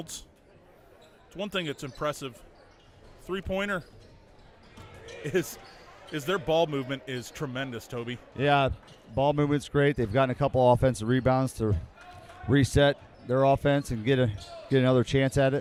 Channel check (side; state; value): both; identical; correlation 1.00